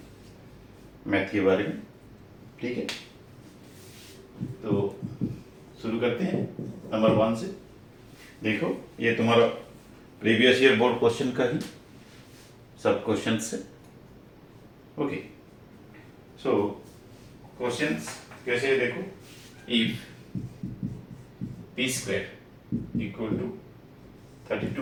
मैथ के बारे में। ठीक है, तो शुरू करते हैं नंबर 1 से। देखो, ये तुम्हारा प्रीवियस ईयर बोर्ड क्वेश्चन का ही सब क्वेश्चन है। ओके, सो क्वेश्चंस कैसे है देखो। If P square equal to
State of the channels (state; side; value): identical; both; correlation 1.00